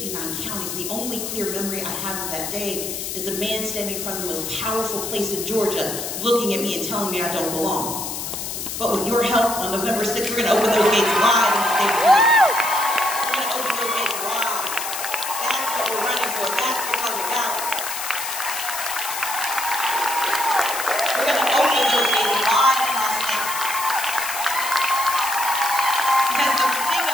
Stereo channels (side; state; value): left; noise; hiss, 5 dB below the sound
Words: counties. The only clear memory I have of that day is a man standing in front of the most powerful place in Georgia looking at me and telling me I don't belong. But with your help, on November 6th, we're going to open those gates wide in the state of Georgia. We're going to open those gates wide. That's what we're running for. That's what's on the ballot. We're going to open those gates wide in our state. Because the thing